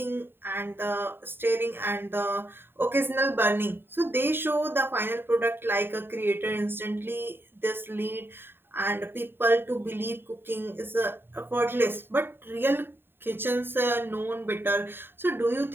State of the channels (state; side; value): late; left; 0.10 ms